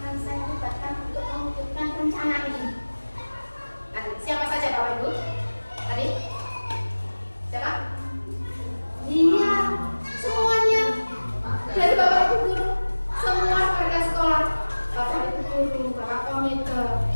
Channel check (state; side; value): inverted; both; correlation -1.00